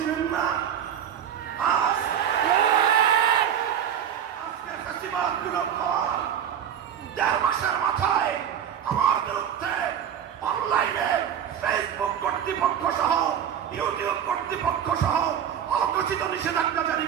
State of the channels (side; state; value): left; quieter; 9.2 dB